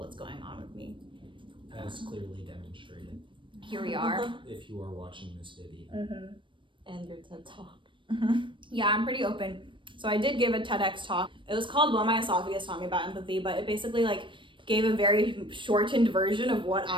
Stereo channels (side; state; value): left; late; 0.24 ms